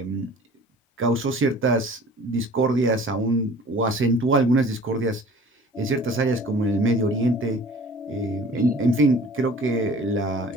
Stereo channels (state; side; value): normal; both; correlation 0.47